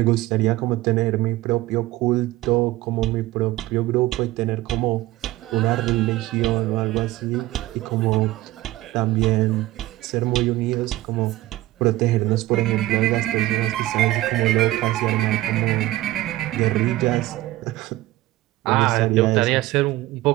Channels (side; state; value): left; quieter; 17.1 dB